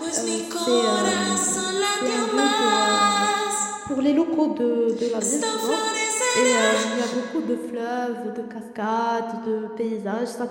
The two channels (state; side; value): identical; both; correlation 1.00